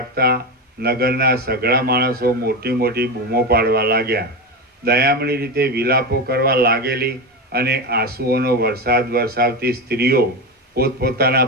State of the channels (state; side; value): normal; both; correlation 0.17